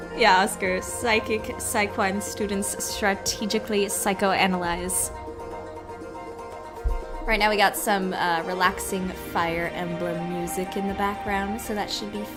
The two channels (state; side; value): identical; both; correlation 1.00